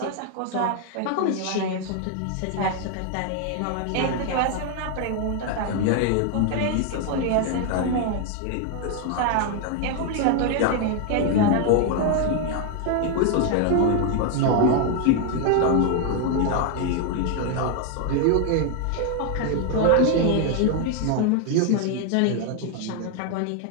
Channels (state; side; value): different; both; correlation 0.01